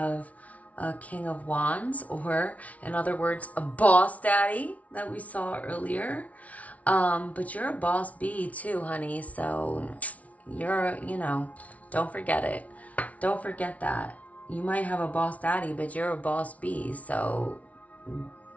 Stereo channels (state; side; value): late; right; 0.068 ms